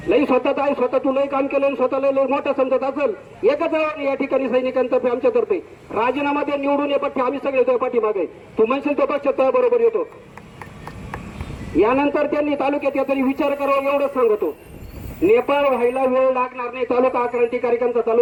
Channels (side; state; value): both; identical; correlation 1.00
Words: लई स्वतः आहे, स्वतः तू लई काम केलं, स्वतःला लई मोठं समजत असेल. एकच आव्हान या ठिकाणी सैनिकांतर्फे आमच्यातर्फे, राजीनामा दे, निवडून ये पट्टी, आम्ही सगळे तो पाठीमागे. तू म्हणशील तो पक्ष तो बरोबर येतो. यानंतर त्यांनी तालुक्यात या तरी विचार करावा एवढंच सांगतो. नेपाळ व्हायला वेळ लागणार नाही, तालुका आक्रांतिकारिकांचा